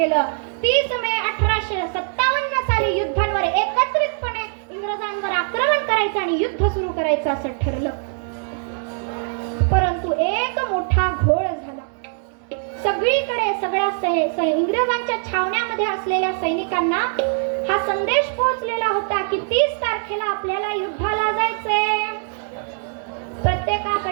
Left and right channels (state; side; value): silent; left; 59 dB below the other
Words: 30 मे 1857 साली युद्धांवर एकत्रितपणे इंग्रजांवर आक्रमण करायचं आणि युद्ध सुरू करायचं असं ठरलं. परंतु एक मोठा घोळ झाला. सगळीकडे सगळ्या इंग्रजांच्या छावण्यामध्ये असलेल्या सैनिकांना हा संदेश पोहोचलेला होता की 30 तारखेला आपल्याला युद्धाला जायचंय.